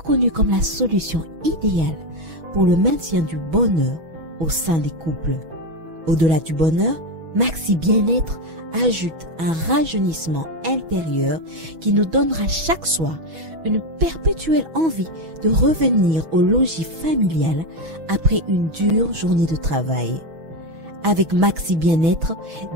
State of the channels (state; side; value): late; left; 6.2 ms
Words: comme la solution idéale pour le maintien du bonheur au sein des couples. Au-delà du bonheur, Maxi Bien-être ajoute un rajeunissement intérieur qui nous donnera chaque soir une perpétuelle envie de revenir au logis familial après une dure journée de travail. Avec Maxi Bien-être,